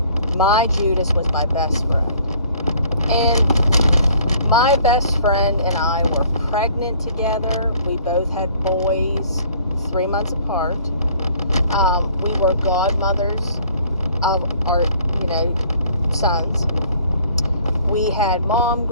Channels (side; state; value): both; inverted; correlation -0.57